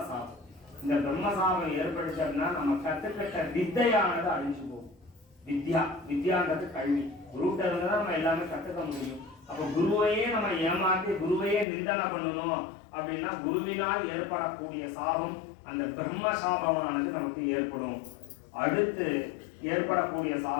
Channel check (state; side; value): drops out; right; at 11.7 s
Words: சாபம். இந்த பிரம்ம சாபம் ஏற்படுத்தா நம்ம கற்றுக்கிட்ட வித்தையானது அழிஞ்சு போகும். வித்யான்றது கல்வி. குருகிட்ட இருந்து தான் நம்ம எல்லாமே கற்றுக்க முடியும். அப்போ குருவையே நம்ம ஏமாற்றி குருவையே நிந்தனை பண்ணணும் அப்படின்னா குருவினால் ஏற்படக்கூடிய சாபம் அந்த பிரம்ம சாபமானது நமக்கு ஏற்படும். அடுத்து ஏற்படக்கூடிய